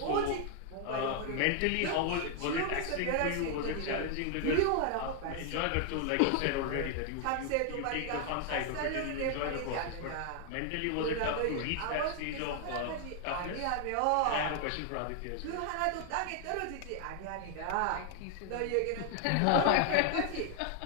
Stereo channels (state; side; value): different; both; correlation 0.00